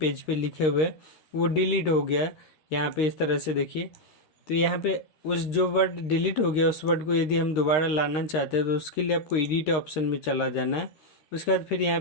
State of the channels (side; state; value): right; late; 13 ms